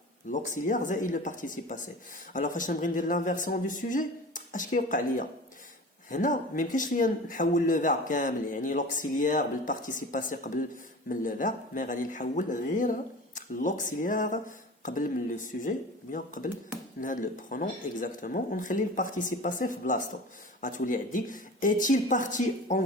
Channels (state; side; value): normal; both; correlation 0.36